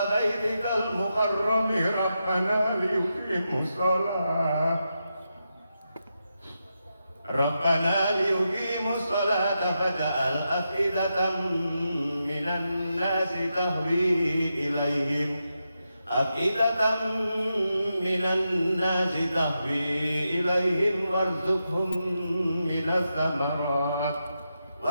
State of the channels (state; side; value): inverted; both; correlation -0.87